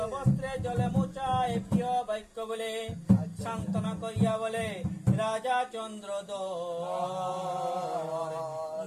বস্ত্রে জলে মোচায় প্রিয় বাক্য বলে। সান্ত্বনা করিয়া বলে রাজা চন্দ্র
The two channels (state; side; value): identical; both; correlation 1.00